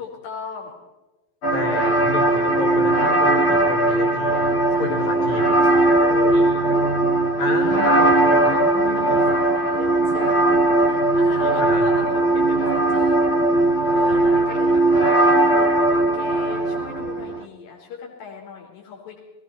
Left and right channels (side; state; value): right; late; 11 ms